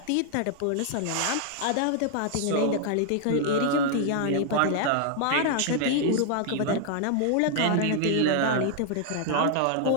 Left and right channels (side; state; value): both; different; correlation 0.00